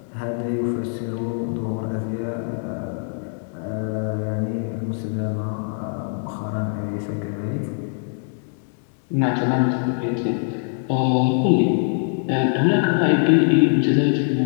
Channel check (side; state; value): right; silent; 58 dB below the other